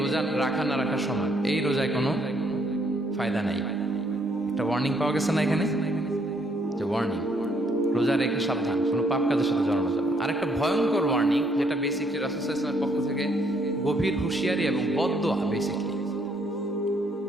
রোজা রাখা না রাখার সমান, এই রোজায় কোনো ফায়দা নাই। একটা ওয়ার্নিং পাওয়া গেছে না এখানে, যে ওয়ার্নিং, রোজা রেখে সাবধান, কোনো পাপ কাজের সাথে জড়ানো যাবে। আরেকটা ভয়ঙ্কর ওয়ার্নিং, যেটা বেসিকলি রাসূল সাল্লাল্লাহু আলাইহি ওয়াসাল্লামের পক্ষ থেকে গভীর হুঁশিয়ারি এবং বদদোয়া, বেসিকলি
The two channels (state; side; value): normal; both; correlation 0.69